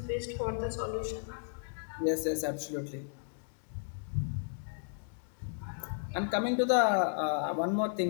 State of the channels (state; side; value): silent; right; digital silence